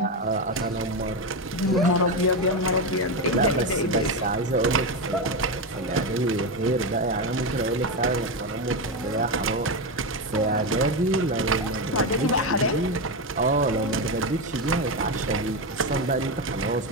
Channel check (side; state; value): both; normal; correlation 0.12